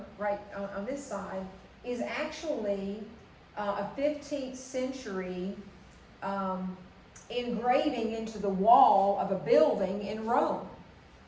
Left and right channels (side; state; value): both; identical; correlation 1.00